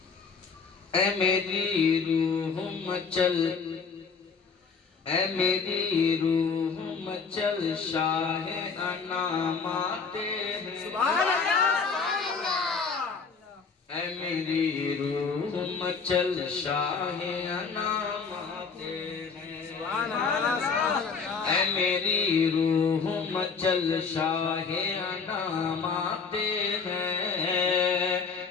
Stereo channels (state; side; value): quieter; right; 5.2 dB